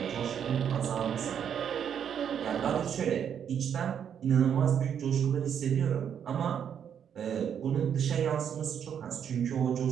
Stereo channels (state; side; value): quieter; left; 8.4 dB